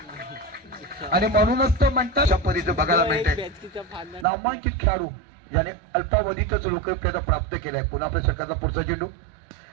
आणि म्हणूनच तो म्हणतात अशा पद्धतीचं बघायला मिळते. नामांकित खेळाडू ज्याने अल्पावधीतच लोकप्रियता प्राप्त केलाय. पुन्हा आपल्या सरकारला पुढचा चेंडू,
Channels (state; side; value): drops out; left; at 4.2 s